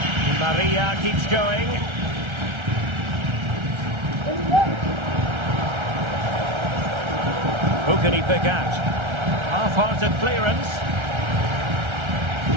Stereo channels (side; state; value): left; late; 1.3 ms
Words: Di Maria keeps going. Who can he pick out? Half-hearted clearance.